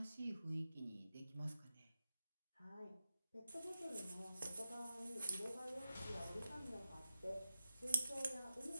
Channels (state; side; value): inverted; both; correlation -0.89